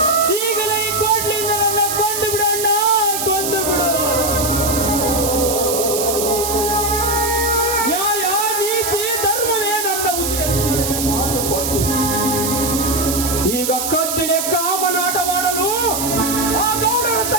ಈಗಲೇ ಈ ಕೋಟ್ಲಿಯಿಂದ ನನ್ನ ಕೊಂದು ಬಿಡು ಅಣ್ಣ, ಕೊಂದು ಬಿಡು. ನ್ಯಾಯ, ನೀತಿ, ಧರ್ಮವೇ ನನ್ನ ಉಸಿರನ್ನು ಮಾತು ಕೊಟ್ಟು ಈಗ ಕತ್ತಿಲೆ ಕಾಮನಾಟ ಮಾಡಲು ಆ ಗೌಡರ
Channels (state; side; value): noise; right; hiss, 2 dB below the sound